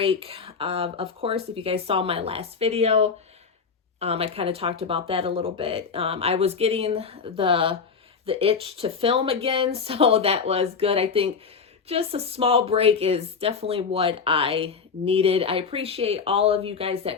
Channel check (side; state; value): right; quieter; 5.6 dB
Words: Of course, if you guys saw my last video, I kind of talked about that a little bit. I was getting the itch to film again, so that was good. I think just a small break is definitely what I needed. I appreciate all of you guys